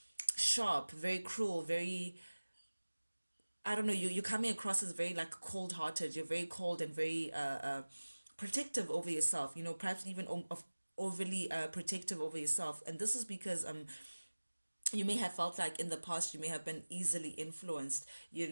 sharp, very cruel, very, I don't know, you're coming across as very like cold hearted. You're very cold and very protective over yourself, perhaps even overly protective over yourself. And this is because you may have felt like in the past you may have been easily influenced,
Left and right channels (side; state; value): both; inverted; correlation -1.00